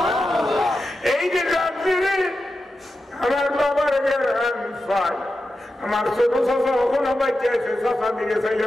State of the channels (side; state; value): both; normal; correlation 0.91